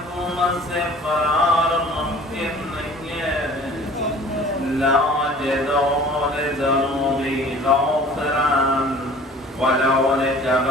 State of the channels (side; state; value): both; normal; correlation 0.48